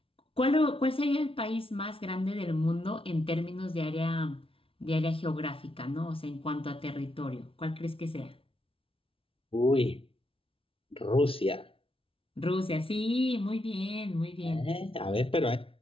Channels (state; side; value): late; right; 0.26 ms